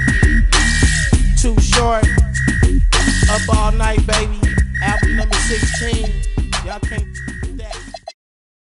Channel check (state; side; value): identical; both; correlation 1.00